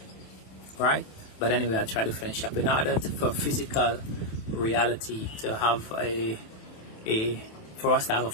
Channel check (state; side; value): late; right; 27 ms